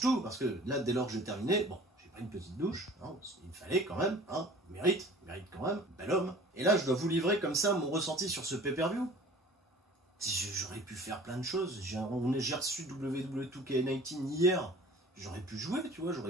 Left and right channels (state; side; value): normal; both; correlation 0.46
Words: tout, parce que là, dès lors que j'ai terminé, bon, j'ai pris une petite douche, hein, il me fallait quand même, hein, mérite quand même, bel homme. Et là, je dois vous livrer comme ça mon ressenti sur ce pay-per-view. J'aurais pu faire plein de choses, j'ai reçu WWE 2K19 hier, j'aurais pu jouer, tu vois,